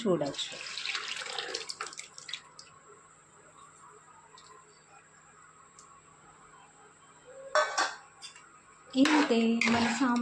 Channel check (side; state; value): both; identical; correlation 1.00